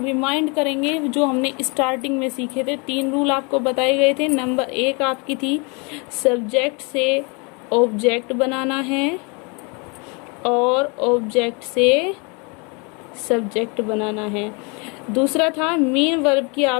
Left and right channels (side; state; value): right; quieter; 31.9 dB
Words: रिमाइंड करेंगे। जो हमने स्टार्टिंग में सीखे थे 3 रूल आपको बताए गए थे। नंबर 1 आपकी थी सब्जेक्ट से ऑब्जेक्ट बनाना है और ऑब्जेक्ट से सब्जेक्ट बनाना है। दूसरा था मेन वर्ब की